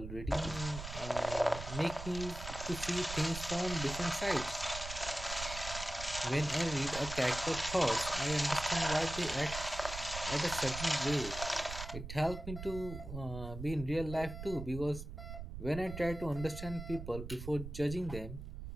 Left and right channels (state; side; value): noise; right; rumble, 9 dB below the sound